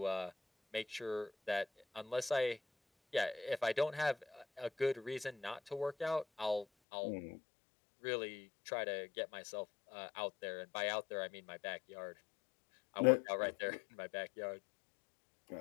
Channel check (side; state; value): right; drops out; at 6.7 s